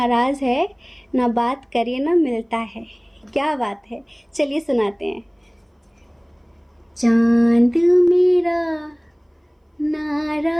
है, ना बात करे ना मिलता है। क्या बात है, चलिए सुनाते हैं। चांद मेरा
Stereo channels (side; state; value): both; identical; correlation 1.00